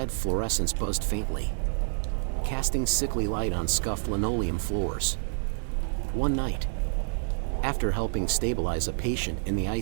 fluorescents buzzed faintly, casting sickly light on scuffed linoleum floors. One night, after helping stabilize a patient in the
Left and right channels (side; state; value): left; silent; digital silence